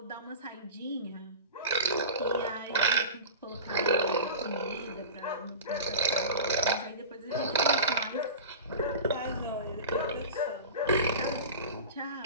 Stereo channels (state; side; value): inverted; both; correlation -0.32